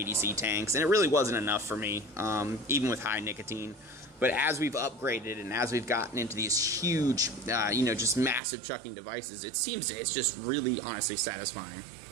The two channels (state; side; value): drops out; left; at 8.4 s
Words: tanks, and it really wasn't enough for me, even with high nicotine. But as we've upgraded and as we've gotten into these huge, you know, just massive chucking devices, it's just really, honestly satisfying.